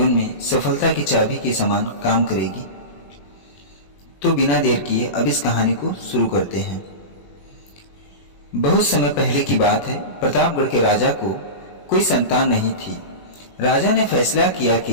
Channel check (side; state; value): right; late; 21 ms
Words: में सफलता की चाबी के समान काम करेगी। तो बिना देर किए अब इस कहानी को शुरू करते हैं। बहुत समय पहले की बात है। प्रतापगढ़ के राजा को कोई संतान नहीं थी। राजा ने फैसला किया